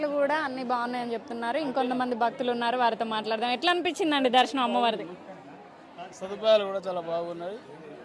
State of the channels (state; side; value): identical; both; correlation 1.00